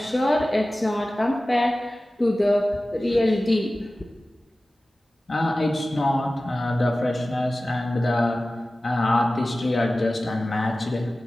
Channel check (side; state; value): both; normal; correlation 0.96